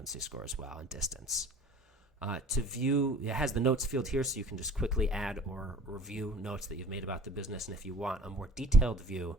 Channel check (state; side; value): normal; both; correlation 0.46